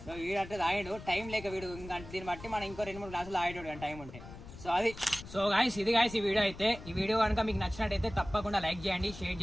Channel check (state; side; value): noise; left; rumble, 15 dB below the sound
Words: సో వీడంటే తాగిండు, టైం లేక వీడు ఇంకా దీన్ని బట్టి మనం ఇంకో 2-3 గ్లాసులు తాగేటోడు కానీ టైం ఉంటే. సో అది. సో గాయస్ ఇది గాయస్ ఈ వీడియో అయితే. ఈ వీడియో కనుక మీకు నచ్చినట్టయితే తప్పకుండా లైక్ చేయండి, షేర్